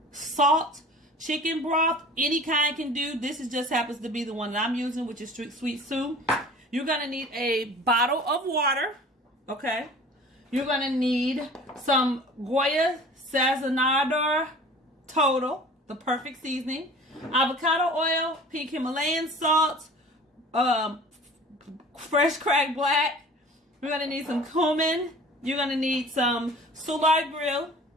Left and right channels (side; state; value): both; normal; correlation 0.44